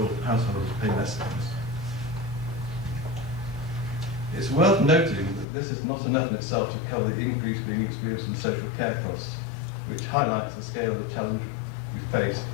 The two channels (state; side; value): drops out; right; at 5.5 s